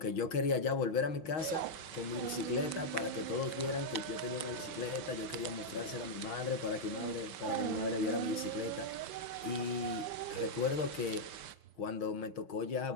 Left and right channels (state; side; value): late; right; 5.2 ms